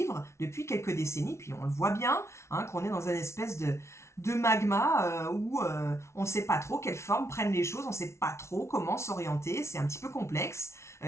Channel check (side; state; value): right; late; 0.13 ms